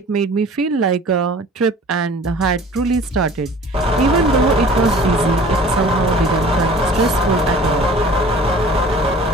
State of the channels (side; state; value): both; normal; correlation 0.46